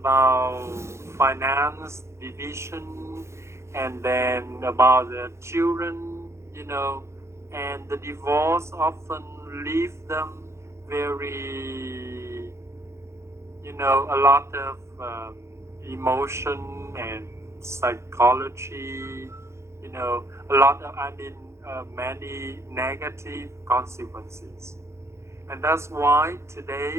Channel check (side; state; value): left; late; 0.13 ms